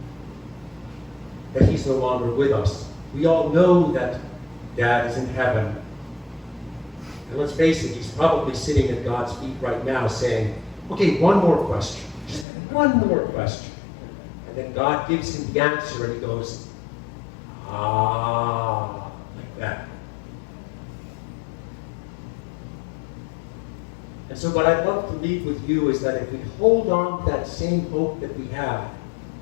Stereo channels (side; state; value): right; drops out; at 12.5 s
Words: that he's no longer with us, we all know that Dad is in heaven. And let's face it, he's probably sitting at God's feet right now saying, okay, one more question. Just one more question. And then God gives him the answer and he goes, like that. And so what I'd love to leave with you is that if we hold on to that same hope that we have,